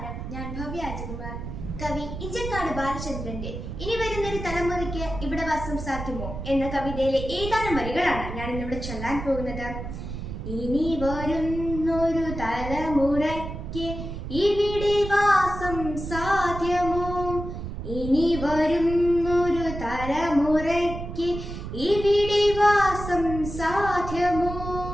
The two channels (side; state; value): right; noise; rumble, 7 dB below the sound